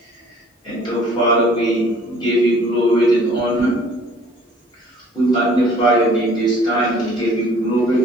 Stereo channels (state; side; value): normal; both; correlation 0.54